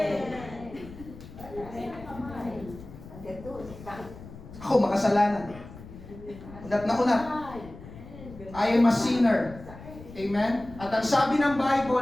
Ako makasalanan. Unat na unat. I am a sinner. Amen? At ang sabi ng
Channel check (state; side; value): noise; left; rumble, 16 dB below the sound